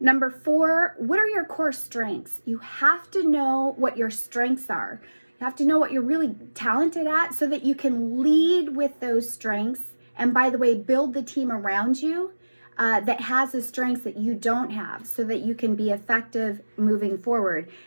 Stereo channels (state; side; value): inverted; both; correlation -1.00